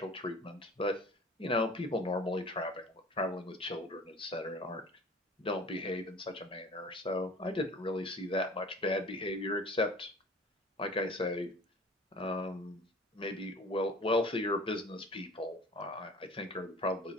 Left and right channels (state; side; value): normal; both; correlation 0.44